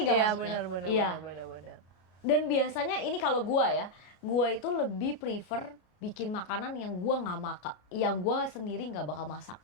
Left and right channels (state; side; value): late; right; 33 ms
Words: Iya maksudnya? benar Iya. benar. Dan biasanya ini kalau gua ya, gua itu lebih prefer bikin makanan yang gua nggak makan, yang gua sendiri nggak bakal masak.